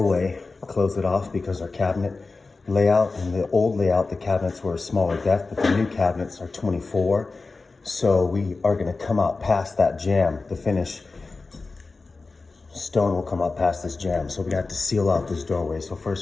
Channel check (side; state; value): right; quieter; 3.8 dB